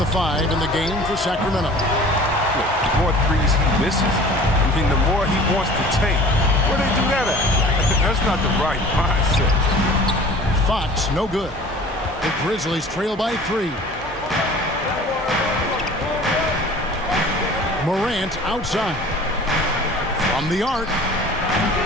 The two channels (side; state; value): both; normal; correlation 0.45